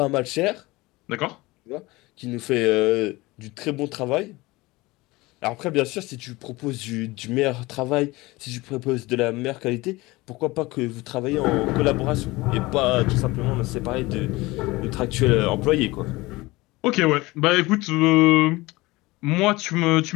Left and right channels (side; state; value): right; quieter; 21.2 dB